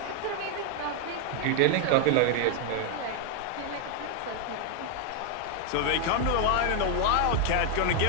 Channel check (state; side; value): different; both; correlation 0.00